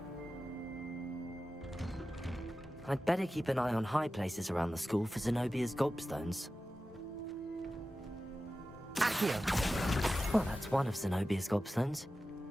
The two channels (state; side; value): normal; both; correlation 0.94